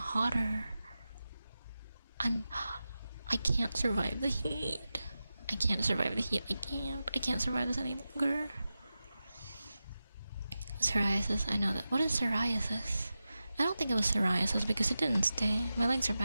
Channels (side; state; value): both; inverted; correlation -0.93